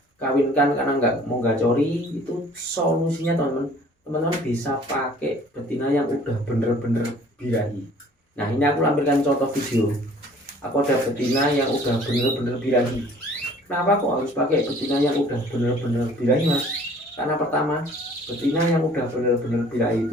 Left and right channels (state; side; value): normal; both; correlation 0.52